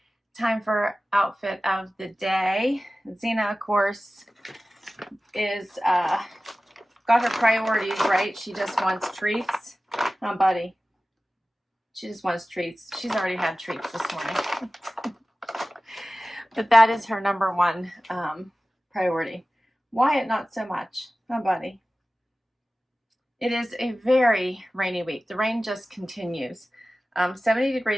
Time for outfit of the day. Xena, of course, is got her priorities right. She just wants treats. Oh, buddy. She just wants treats. She's already had treats this morning. But that is her number one priority. Wyatt, not so much. Oh, buddy. It is a very rainy week. The rain just continues. 70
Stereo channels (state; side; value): normal; both; correlation 0.96